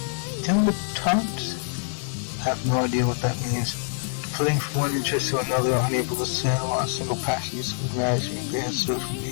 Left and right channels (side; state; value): right; silent; 56 dB below the other